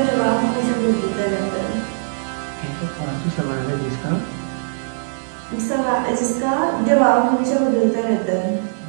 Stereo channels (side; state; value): left; silent; digital silence